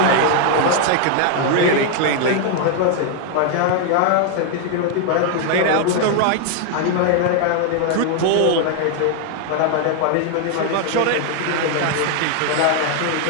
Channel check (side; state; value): both; different; correlation 0.00